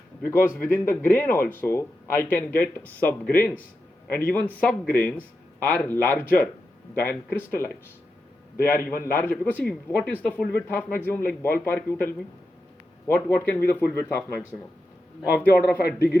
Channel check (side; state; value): both; normal; correlation 0.89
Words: because within the grain also I can get subgrains, and even subgrains are larger than crystallites. They are even larger, because see, what is the full width half maximum, like ballpark, you tell me? What can be the full width half maximum? Of the order of a